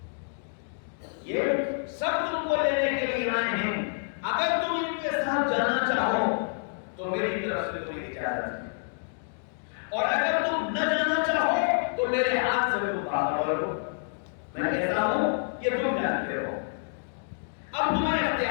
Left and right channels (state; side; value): silent; right; digital silence